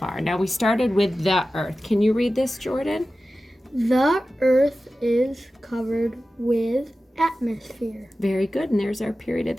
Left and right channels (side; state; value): both; normal; correlation 0.94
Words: Now we started with the earth. Can you read this, Jordan? The earth is covered with atmosphere. Very good. And there's our period at